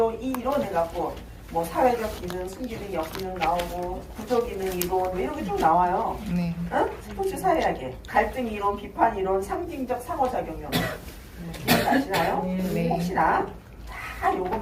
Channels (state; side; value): identical; both; correlation 1.00